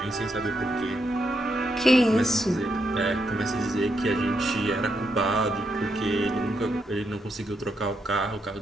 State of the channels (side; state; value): both; normal; correlation 0.80